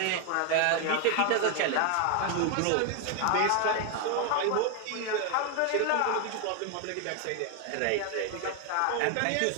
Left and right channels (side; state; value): both; different; correlation 0.01